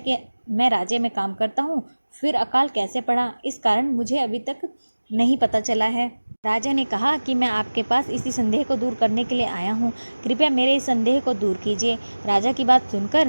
मैं राज्य में काम करता हूँ, फिर अकाल कैसे पड़ा, इस कारण मुझे अभी तक नहीं पता चला है। राजा ने कहा कि मैं आपके पास इसी संदेह को दूर करने के लिए आया हूँ, कृपया मेरे इस संदेह को दूर कीजिए। राजा की बात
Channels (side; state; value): both; inverted; correlation -1.00